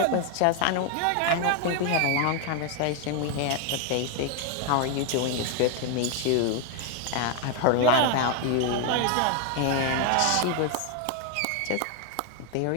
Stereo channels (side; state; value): both; different; correlation 0.01